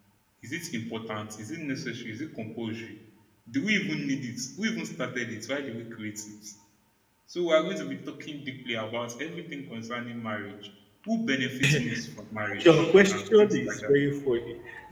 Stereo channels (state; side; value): identical; both; correlation 1.00